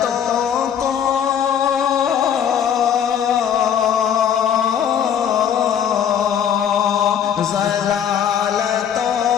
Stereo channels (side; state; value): right; quieter; 8.8 dB